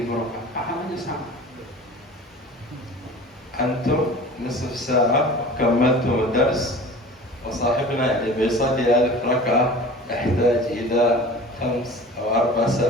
rakaat. Pahalanya sama. أنتم نصف ساعة كملتم الدرس، وصاحبنا اللي بيصلي 1000 ركعة يحتاج إلى 5 أو 4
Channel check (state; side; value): normal; both; correlation 0.40